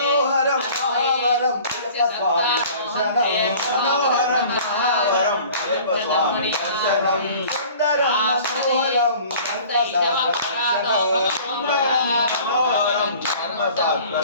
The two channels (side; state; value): both; inverted; correlation -0.47